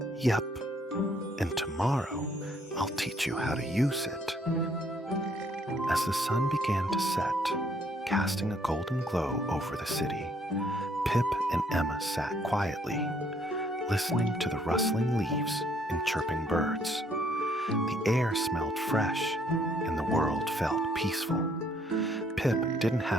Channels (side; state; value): both; normal; correlation 0.66